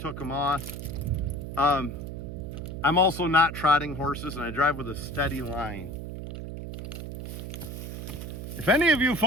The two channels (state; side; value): noise; right; hum, 7 dB below the sound